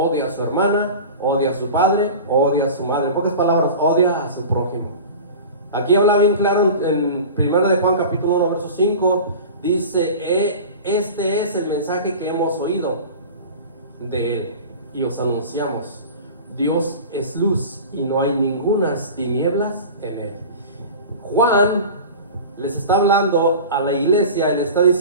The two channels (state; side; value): inverted; both; correlation -0.35